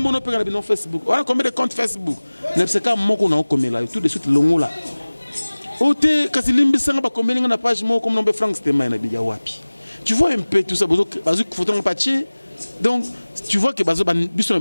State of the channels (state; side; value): inverted; both; correlation -1.00